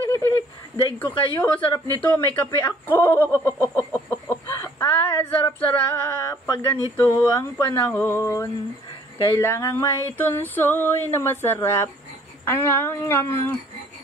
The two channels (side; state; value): both; normal; correlation 0.58